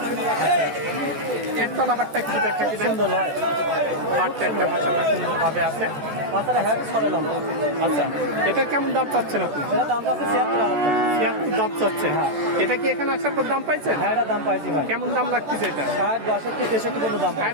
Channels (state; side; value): late; left; 14 ms